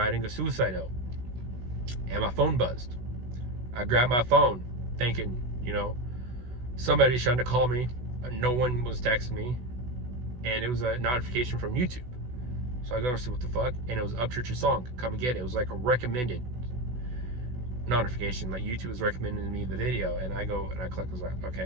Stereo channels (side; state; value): left; late; 16 ms